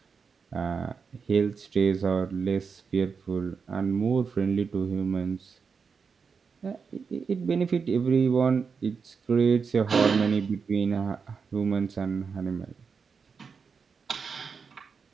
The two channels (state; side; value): quieter; left; 5.6 dB